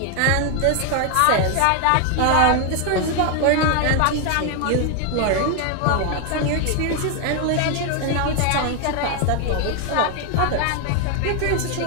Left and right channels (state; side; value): different; both; correlation 0.01